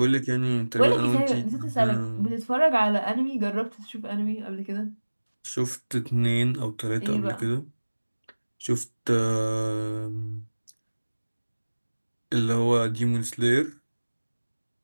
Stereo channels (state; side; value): inverted; both; correlation -1.00